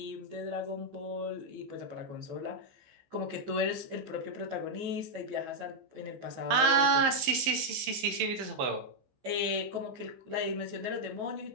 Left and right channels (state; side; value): late; left; 15 ms